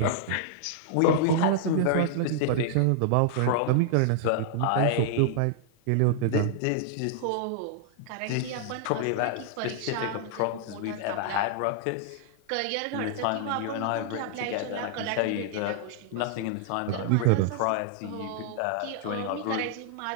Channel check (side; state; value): both; different; correlation -0.01